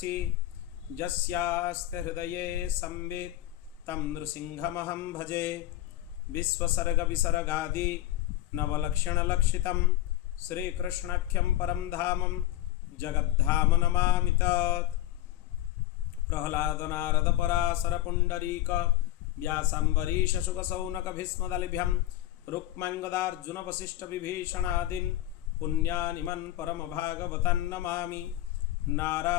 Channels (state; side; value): quieter; right; 14.5 dB